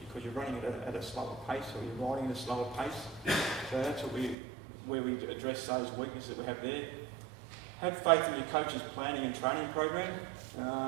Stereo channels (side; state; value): left; drops out; at 4.4 s